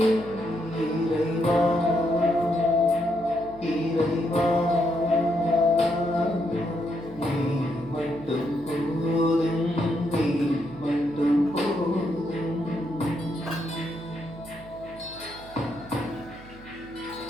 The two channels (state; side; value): noise; right; hum, 19 dB below the sound